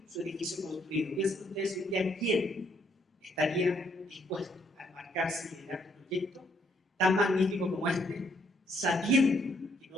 su edificio construido. Piensen ustedes un día quién estaría dispuesto a embarcarse y liderar un proyecto tan magnífico como este, sabiendo que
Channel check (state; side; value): normal; both; correlation 0.70